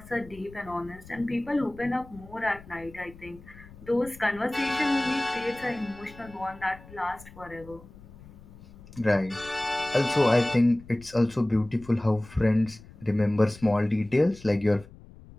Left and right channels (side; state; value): left; noise; rumble, 20 dB below the sound